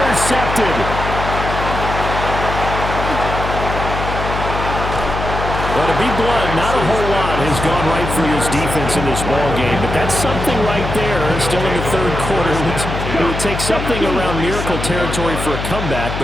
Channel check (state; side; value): noise; left; hum, 5 dB below the sound